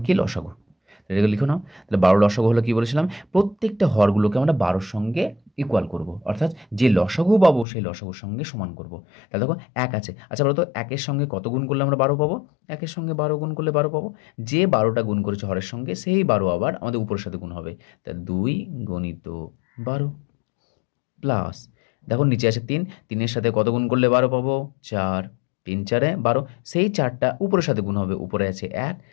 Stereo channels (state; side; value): drops out; right; at 7.7 s